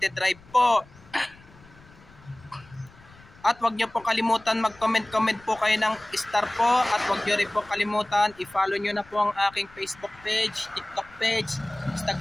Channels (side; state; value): left; noise; rumble, 25 dB below the sound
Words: Drive po. At wag niyo po kalimutan mag-comment po kayo ng star po. At wag niyo rin po kalimutan i-follow niyo na po ang aking Facebook page, TikTok page,